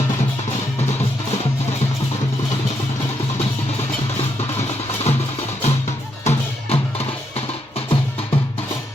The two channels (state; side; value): normal; both; correlation 0.79